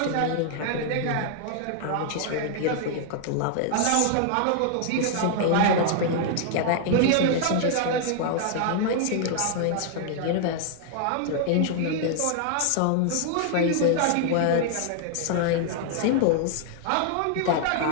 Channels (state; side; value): different; both; correlation 0.00